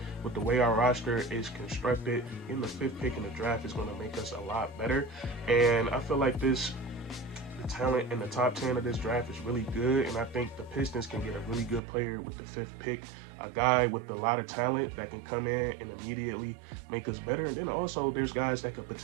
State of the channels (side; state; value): left; drops out; at 11.8 s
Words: the way our roster is constructed. In the 5th pick in the draft is going to make us a lot better, and I feel like the talent in the top 10 of this draft is really good, and I think the Pistons can get a really good player with the 5th pick, a guy with a lot of talent that can come in and immediately make us better. And then also there's guys that could